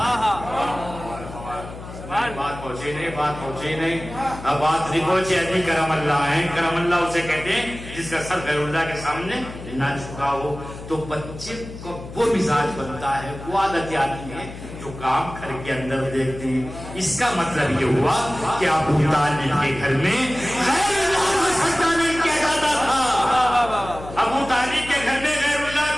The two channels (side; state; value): left; noise; hum, 13 dB below the sound